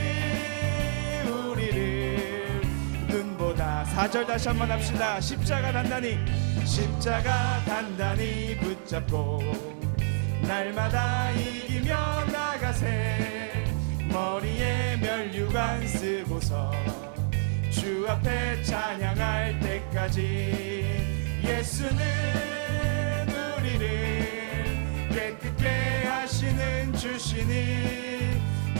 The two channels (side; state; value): left; silent; 57 dB below the other